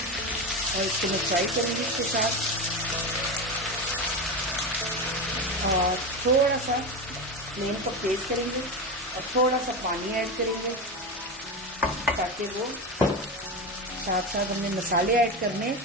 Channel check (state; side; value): normal; both; correlation 0.19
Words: और इसको मैं फ्राई करूंगी इसके साथ। और थोड़ा सा फ्लेम को तेज करेंगे और थोड़ा सा पानी ऐड करेंगे ताकि वो साथ साथ हमने मसाले ऐड करने